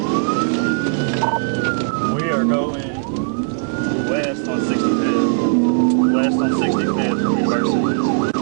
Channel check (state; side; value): silent; left; 67 dB below the other